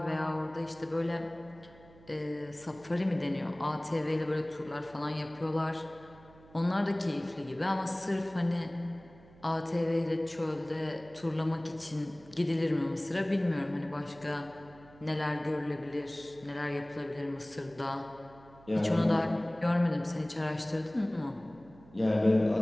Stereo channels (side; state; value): right; noise; hum, 23 dB below the sound